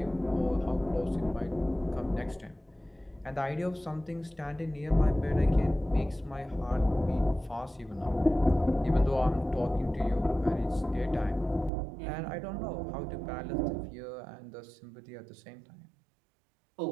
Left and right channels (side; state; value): left; drops out; at 11.7 s